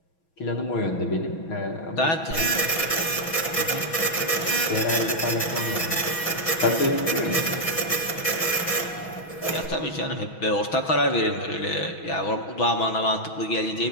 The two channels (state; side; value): late; right; 6.2 ms